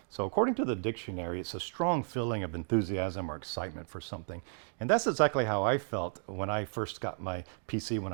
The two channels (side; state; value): left; silent; 56 dB below the other